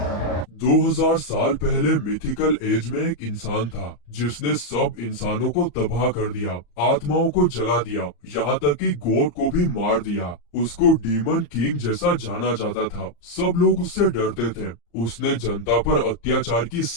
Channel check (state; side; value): late; right; 34 ms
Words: 2000 साल पहले mythical as में एक इंसान था जिसने सब इंसानों को तबाह कर दिया, आत्माओं को जला दिया, यहाँ तक कि गॉड को भी मार दिया। उसको डीमन किंग जैसा जाना जाता था। सब लोग उससे डरते थे। उसने जनता पर अत्याचार की